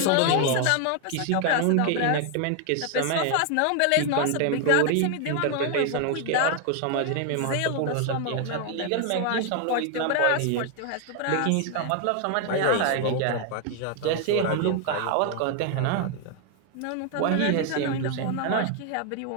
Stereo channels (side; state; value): both; different; correlation 0.00